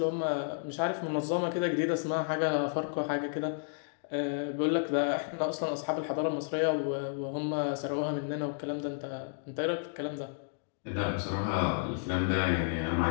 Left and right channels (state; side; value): silent; right; digital silence